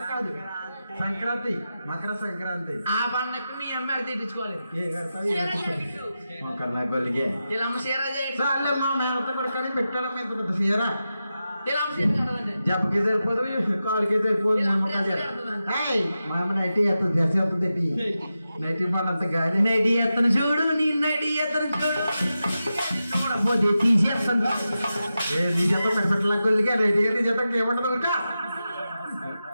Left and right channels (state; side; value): inverted; both; correlation -0.91